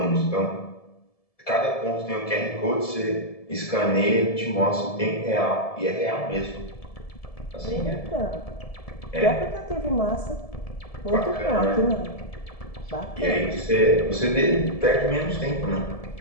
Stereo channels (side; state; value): right; late; 1.7 ms